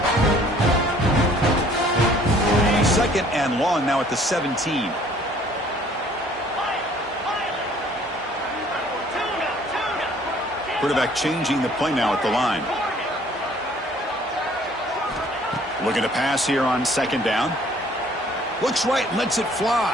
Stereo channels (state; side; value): normal; both; correlation 0.57